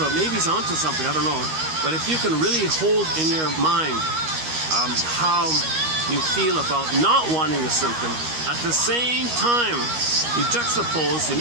maybe he's onto something. I don't know. But if you can really hold in your mind how you feel about not wanting a symptom. At the same time, you juxtapose, you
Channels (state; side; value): late; left; 13 ms